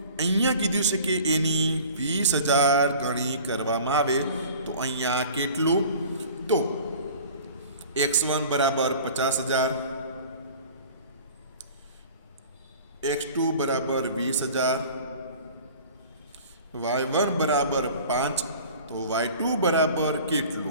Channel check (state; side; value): inverted; both; correlation -0.45